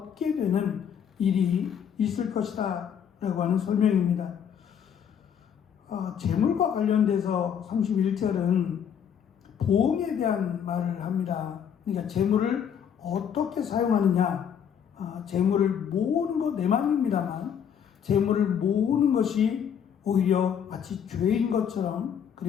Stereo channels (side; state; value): right; quieter; 8.2 dB